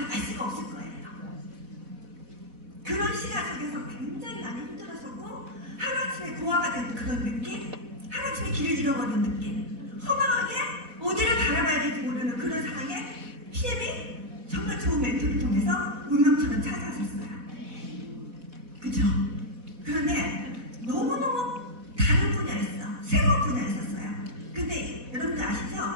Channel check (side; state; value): left; late; 4.1 ms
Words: 알 수가 없을 거예요. 그런 시간 속에서 굉장히 많이 힘들었었고 하루아침에 고아가 된 그런 느낌, 하루아침에 길을 잃어버린 느낌, 허망하게 어디를 바라봐야 될지 모르는 그런 상황에 PM이 정말 좋은 멘토를 통해서 운명처럼 찾아왔었어요. 그쵸? 그런데 너무너무 다른 분야였어. 새로운 분야였었어요. 근데 여러분들 아시죠?